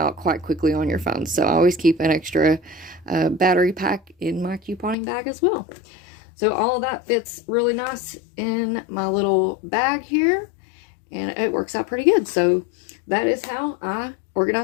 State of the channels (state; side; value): drops out; right; at 5.0 s